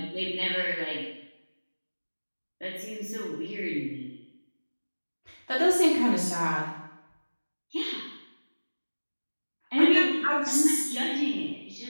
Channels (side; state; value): both; inverted; correlation -1.00